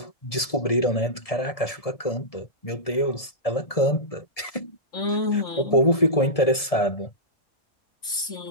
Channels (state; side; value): late; right; 1.7 ms